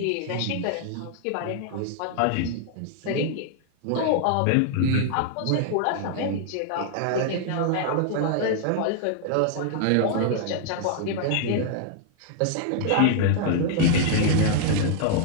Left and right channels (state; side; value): different; both; correlation -0.01